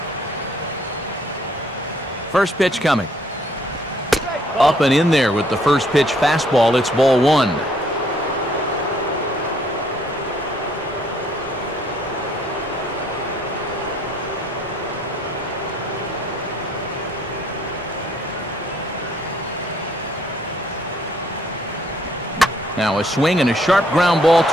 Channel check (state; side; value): normal; both; correlation 0.65